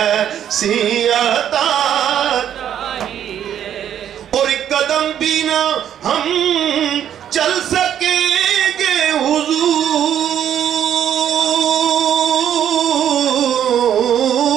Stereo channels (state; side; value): quieter; left; 9.9 dB